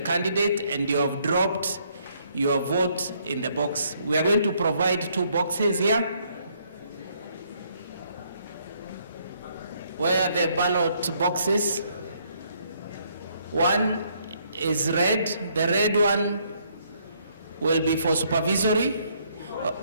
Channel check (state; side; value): inverted; both; correlation -0.69